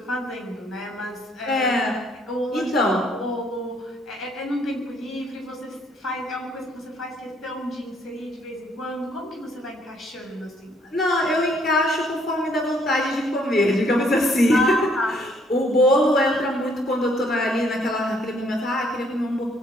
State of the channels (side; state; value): both; normal; correlation 0.66